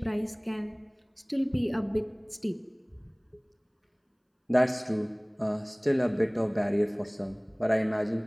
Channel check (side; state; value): both; identical; correlation 1.00